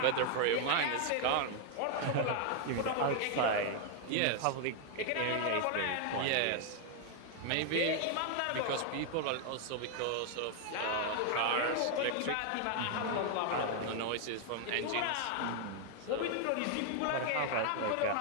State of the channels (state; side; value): different; both; correlation 0.00